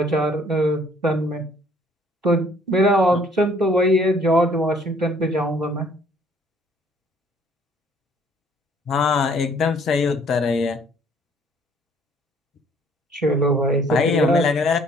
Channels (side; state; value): both; normal; correlation 0.60